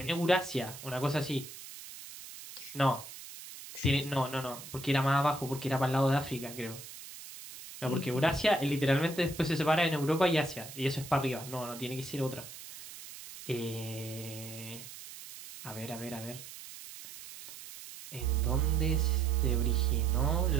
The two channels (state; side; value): noise; right; hiss, 14 dB below the sound